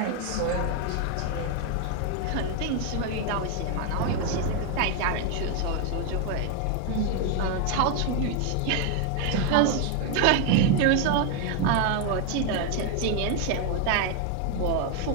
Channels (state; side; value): different; both; correlation 0.01